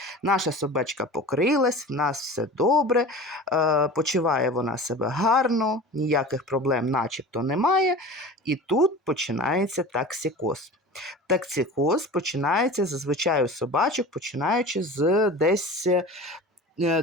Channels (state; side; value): normal; both; correlation 0.36